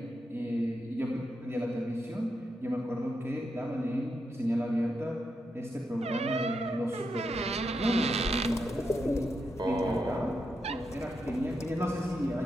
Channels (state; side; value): normal; both; correlation 0.84